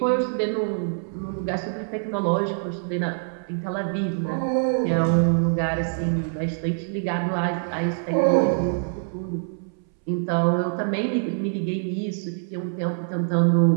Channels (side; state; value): left; silent; 62 dB below the other